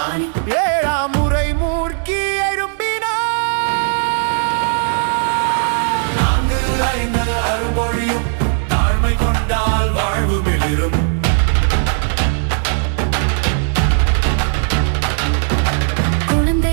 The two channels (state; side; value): silent; left; digital silence